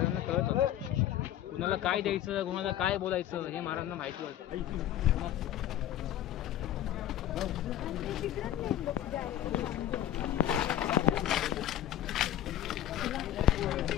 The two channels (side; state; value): right; quieter; 12.2 dB